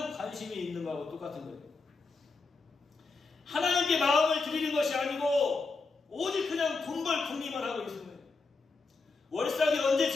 관심이 있는 거하고 똑같은 거예요. 하나님께 마음을 드리는 것이 아니고 오직 그냥 돈벌 궁리만 하고 있는 거예요. 월삭이 언제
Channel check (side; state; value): right; quieter; 4.0 dB